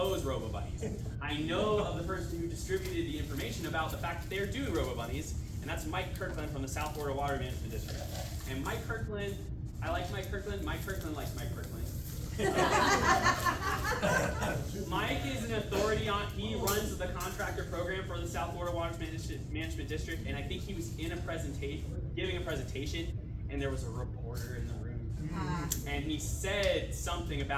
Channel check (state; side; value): identical; both; correlation 1.00